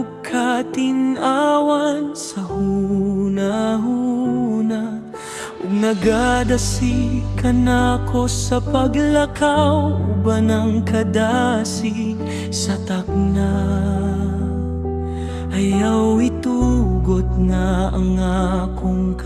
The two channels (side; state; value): both; identical; correlation 1.00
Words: katinawan sa hunahuna, ug nagadasi ka nako sa paglakaw, uban ang kadasig sa takna. Ayaw itugot nga ang akong